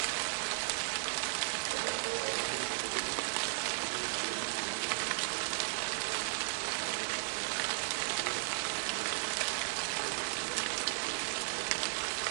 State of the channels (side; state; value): left; silent; digital silence